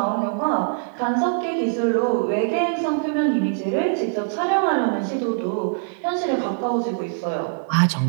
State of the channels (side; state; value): left; silent; 64 dB below the other